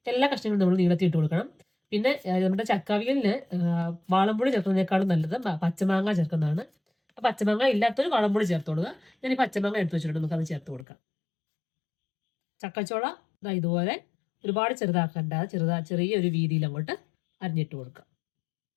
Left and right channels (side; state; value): right; drops out; at 10.9 s